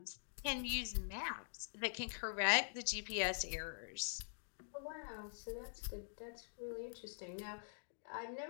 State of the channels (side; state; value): right; silent; digital silence